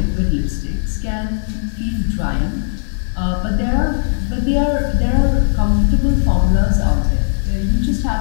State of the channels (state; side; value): silent; right; digital silence